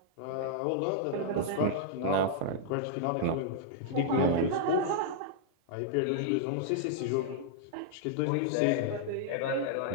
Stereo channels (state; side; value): different; both; correlation -0.01